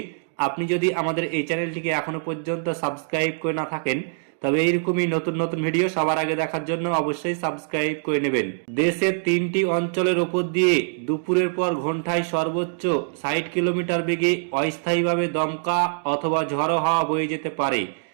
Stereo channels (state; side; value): silent; left; digital silence